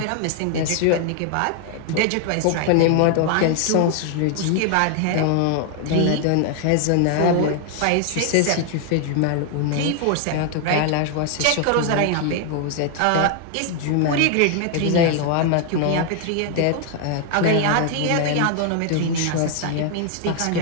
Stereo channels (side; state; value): both; different; correlation 0.00